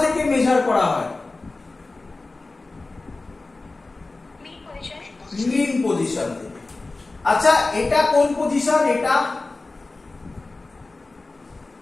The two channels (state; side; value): quieter; right; 3.3 dB